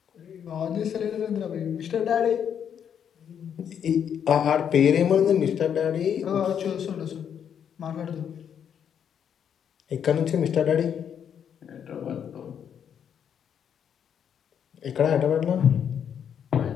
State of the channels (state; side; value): quieter; right; 8.4 dB